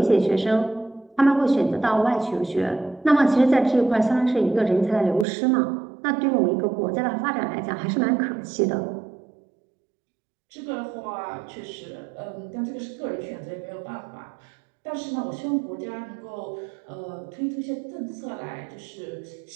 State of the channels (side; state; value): left; drops out; at 5.2 s